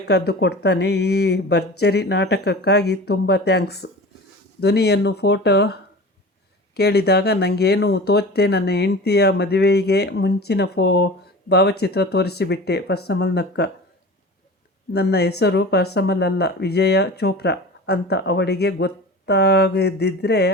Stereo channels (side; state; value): both; normal; correlation 0.36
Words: ಕೊಡ್ತಾನೆ. ಈ ಭರ್ಜರಿ ನಾಟಕಕ್ಕಾಗಿ ತುಂಬ ಥ್ಯಾಂಕ್ಸ್. ಧ್ವನಿಯನ್ನು ಫೋಟೋ ಕೇಳಿದಾಗ ನನಗೇನು ತೋಚದೆ ನನ್ನ ಹೆಂಡತಿಯ ಮದುವೆಗೆ ಮುಂಚಿನ ಭಾವಚಿತ್ರ ತೋರಿಸಿಬಿಟ್ಟೆ. ಪರ್ಸಮಲ್ ನಕ್ಕ. ನನ್ನ ಹೆಸರು ಪರ್ಸಮಲ್ ಅಲ್ಲ, ವಿಜಯ ಚೋಪ್ರಾ ಅಂತ ಅವಳಿಗೆ ಗೊತ್ತಾಗದಿದ್ದರೆ